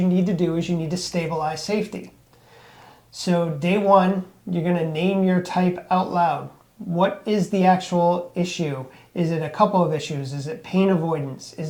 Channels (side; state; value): both; identical; correlation 1.00